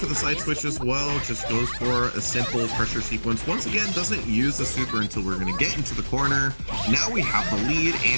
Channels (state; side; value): inverted; both; correlation -1.00